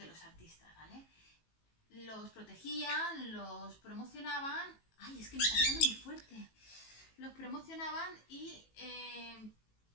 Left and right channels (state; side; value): late; right; 18 ms